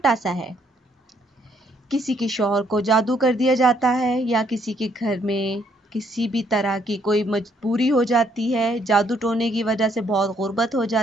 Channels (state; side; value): normal; both; correlation 0.69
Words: सा है। किसी के शौहर को जादू कर दिया जाता है या किसी के घर में किसी भी तरह की कोई मजबूरी हो जाती है, जादू टोने की वजह से बहुत गुर्बत हो